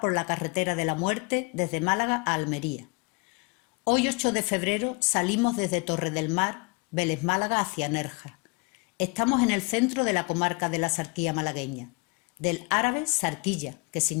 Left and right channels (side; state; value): right; quieter; 29.3 dB